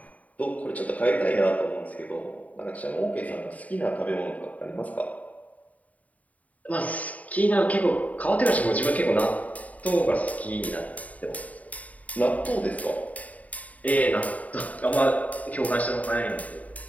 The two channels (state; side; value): late; right; 0.071 ms